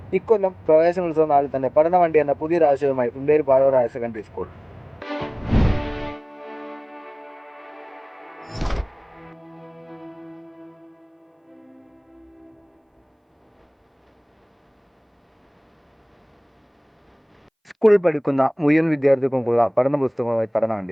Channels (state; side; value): identical; both; correlation 1.00